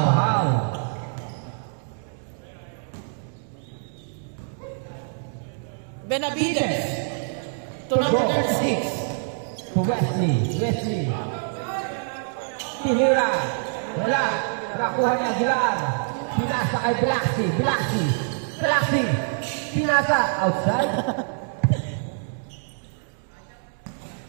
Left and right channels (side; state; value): left; silent; digital silence